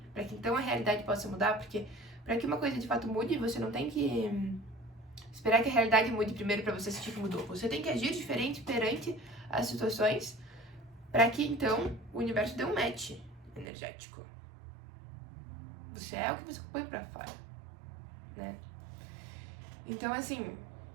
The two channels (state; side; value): drops out; left; at 13.7 s